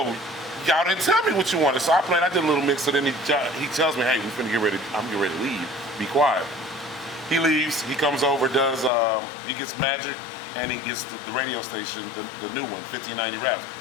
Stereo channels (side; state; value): right; drops out; at 8.9 s